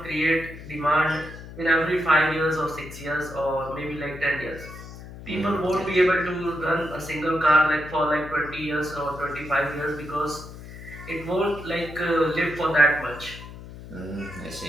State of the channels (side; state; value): left; noise; hum, 14 dB below the sound